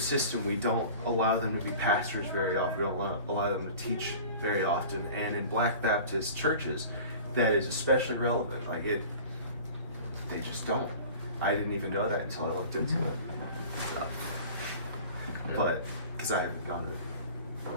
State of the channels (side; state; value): both; inverted; correlation -0.41